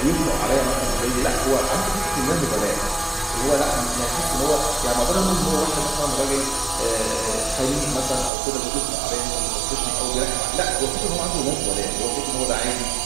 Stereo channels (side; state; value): left; drops out; at 8.3 s